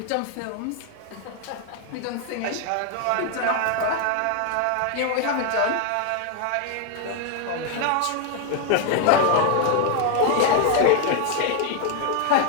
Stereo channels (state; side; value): different; both; correlation 0.00